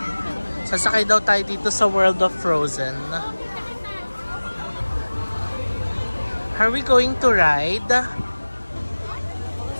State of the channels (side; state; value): both; inverted; correlation -1.00